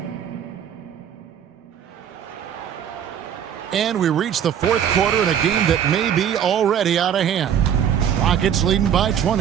And we reach the 4th quarter in a game that may be already out of hand. Rockets leading by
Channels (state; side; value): quieter; left; 9.1 dB